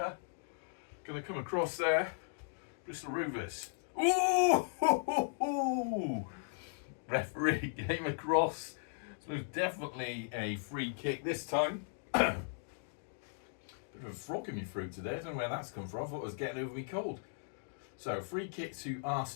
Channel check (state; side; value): silent; right; digital silence